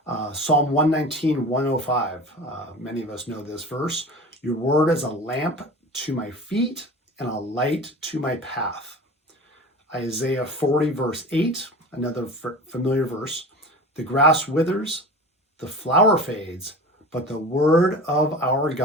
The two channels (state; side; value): normal; both; correlation 0.35